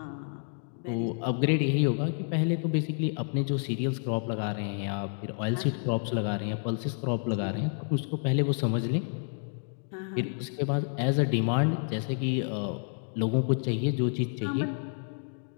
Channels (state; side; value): silent; right; 56 dB below the other